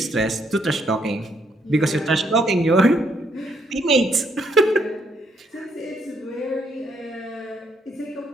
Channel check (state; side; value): normal; both; correlation 0.72